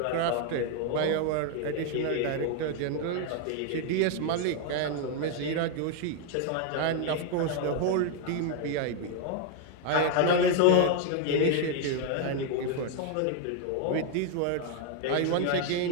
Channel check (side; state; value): both; different; correlation 0.01